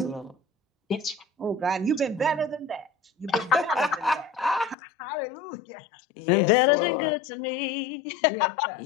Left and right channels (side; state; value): right; drops out; at 4.8 s